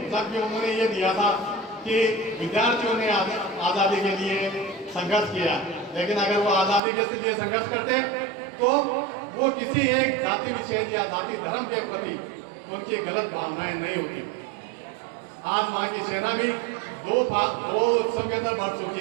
जबकि उन्होंने ये दिया था कि विद्यार्थियों ने आज़ादी के लिए संघर्ष किया, लेकिन अगर वो आज़ादी के लिए संघर्ष करते तो वो किसी एक जाति विशेष या जाति धर्म के प्रति उनकी गलत भावनाएं नहीं होती। आज वहाँ की सेना भी दो उत्सव के अंदर बढ़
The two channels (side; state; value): left; drops out; at 6.8 s